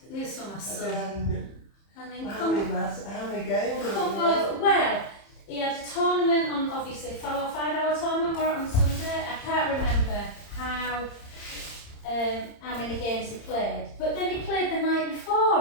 this one, my son. And then How many games? come over. Well, he had a tournament on, obviously, a 5-hour tournament or on Sunday. I can't remember how many games he played. But then he played the night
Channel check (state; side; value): late; right; 30 ms